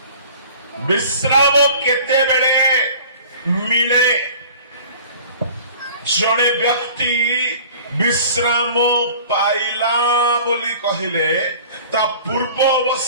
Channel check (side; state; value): both; inverted; correlation -0.45